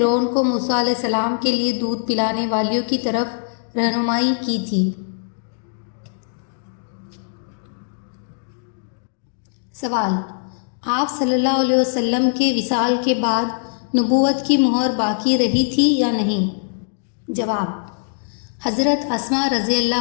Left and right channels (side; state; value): right; silent; 65 dB below the other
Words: کو موسیٰ علیہ السلام کے لیے دودھ پلانے والیوں کی طرف رہنمائی کی تھی۔ سوال: آپ صلی اللہ علیہ وسلم کے وصال کے بعد نبوت کی مہر باقی رہی تھی یا نہیں؟ جواب: حضرت اسماء رضی